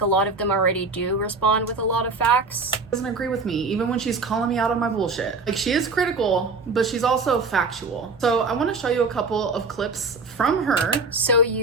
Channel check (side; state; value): left; quieter; 3.8 dB